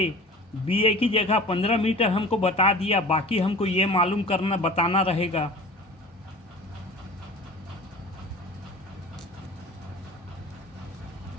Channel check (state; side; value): normal; both; correlation 0.40